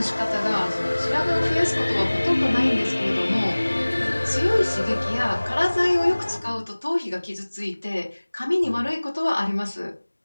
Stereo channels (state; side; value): inverted; both; correlation -1.00